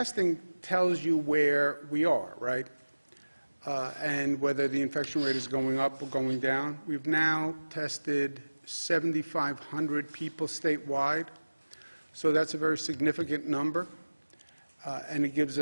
tells you where we are, right? And whether the infection rate is going up or going down. We've now tested 7,500 people statewide, so that's a very significant number, and it gives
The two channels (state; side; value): inverted; both; correlation -1.00